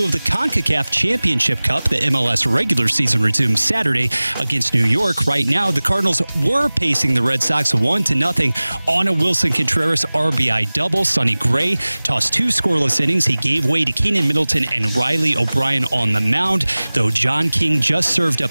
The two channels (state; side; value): inverted; both; correlation -0.99